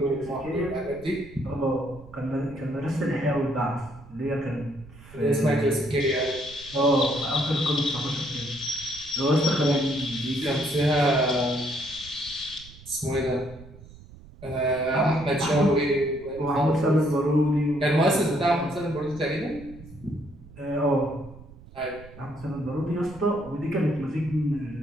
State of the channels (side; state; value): right; noise; rumble, 19 dB below the sound